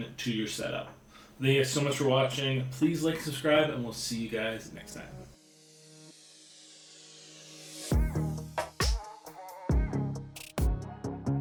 to your setup. Thank you guys so much for watching. Please like, subscribe, and we'll see you guys next time.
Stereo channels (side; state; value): both; identical; correlation 1.00